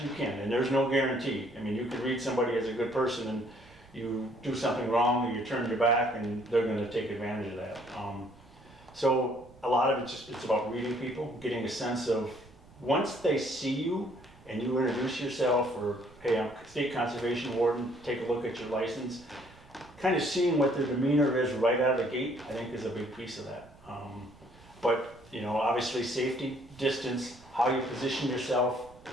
you can. And there's no guarantee. I mean, you could read somebody as a good person and you do something wrong or you turn your back and they're going to take advantage of that. So a lot of it's about reading people, getting a sense of once they see you and you introduce yourself or, hey, I'm state conservation warden, take a look at your license, kind of seeing what their demeanor is right out of the gate, I think is a big piece of that. But, you know, obviously safety, distance, how you position yourself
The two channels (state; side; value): noise; right; rumble, 24 dB below the sound